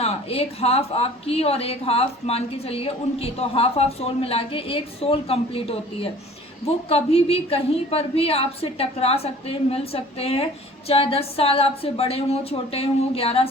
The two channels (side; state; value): both; normal; correlation 0.48